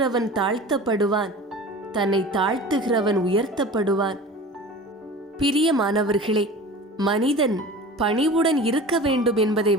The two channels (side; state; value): both; normal; correlation 0.38